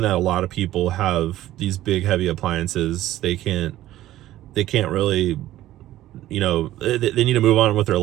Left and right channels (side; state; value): left; quieter; 14.4 dB